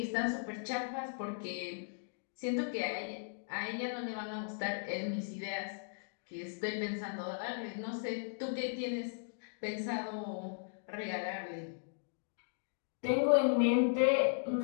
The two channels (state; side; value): silent; right; digital silence